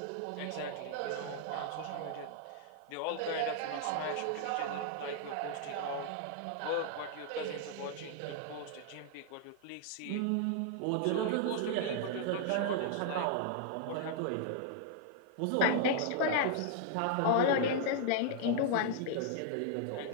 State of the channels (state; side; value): different; both; correlation -0.01